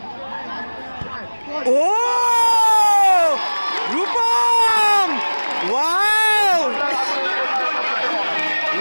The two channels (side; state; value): both; inverted; correlation -1.00